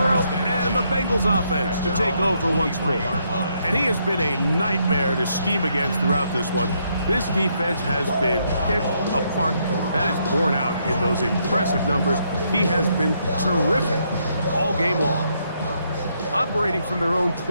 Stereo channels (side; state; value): both; inverted; correlation -0.75